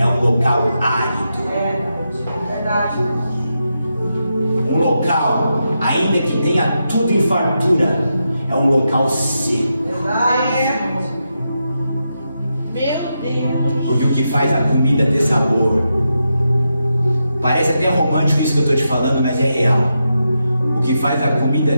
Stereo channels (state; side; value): inverted; both; correlation -0.86